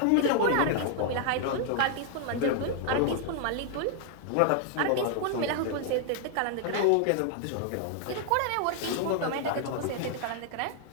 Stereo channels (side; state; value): both; different; correlation 0.00